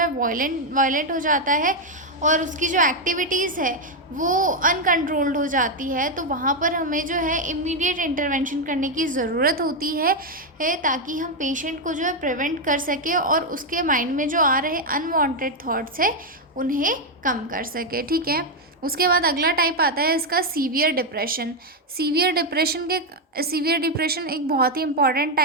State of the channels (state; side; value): normal; both; correlation 0.03